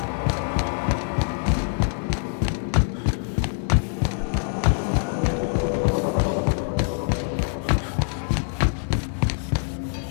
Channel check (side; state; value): right; silent; 59 dB below the other